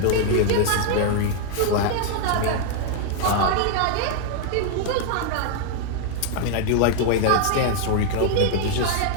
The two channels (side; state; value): both; different; correlation -0.01